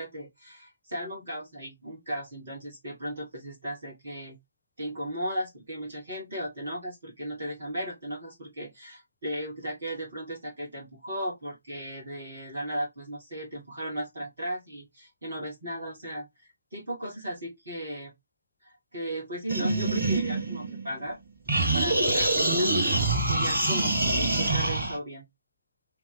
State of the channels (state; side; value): inverted; both; correlation -0.71